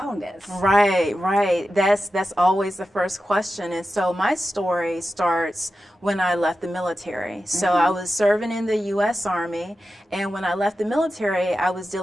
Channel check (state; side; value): normal; both; correlation 0.92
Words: Right. That's always the first question. And so my story starts when I left the military. So I was serving in the U.S. Army, and when I left the military, I was